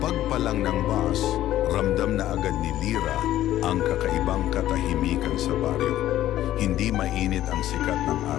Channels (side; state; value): right; quieter; 13.4 dB